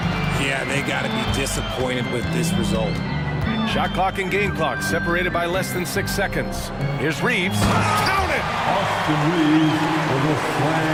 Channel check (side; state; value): both; identical; correlation 1.00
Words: Yeah, they got to be disappointed with this result. Shot clock and game clock separated by less than 6 seconds. Here's Reeves. Count it! Austin Reeves with a